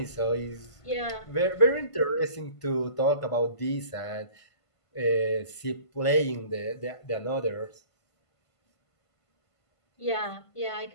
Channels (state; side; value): late; right; 1.5 ms